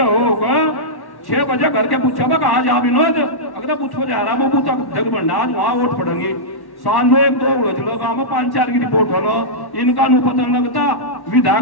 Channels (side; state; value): right; late; 1.1 ms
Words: होगा 6 बजे घर के पूछा कहा जा विनोद, अगर बूथ पर जा रहा वो बूथ जग बनना, आज वहां वोट पड़ेंगे। शाम में 1-2 उड़ज लो, गाँव में 5-4 की रिपोर्ट हो लो, इनका नु पता लगता